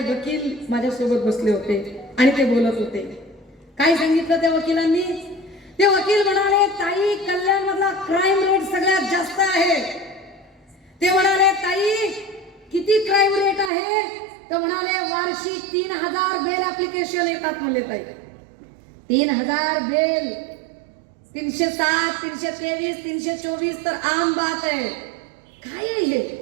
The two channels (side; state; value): left; drops out; at 13.7 s